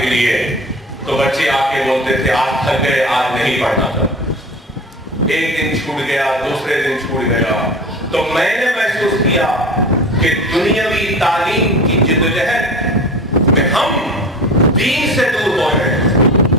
کے لیے، تو بچے آ کے بولتے تھے آج تھک گئے، آج نہیں پڑھنا تھا۔ ایک دن چھوٹ گیا، دوسرے دن چھوٹ گیا، تو میں نے محسوس کیا کہ دنیاوی تعلیم کی جدوجہد میں ہم دین سے دور ہو رہے ہیں۔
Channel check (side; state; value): both; normal; correlation 0.35